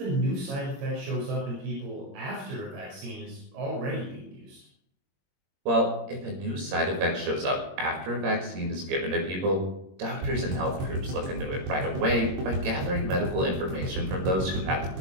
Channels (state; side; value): late; left; 21 ms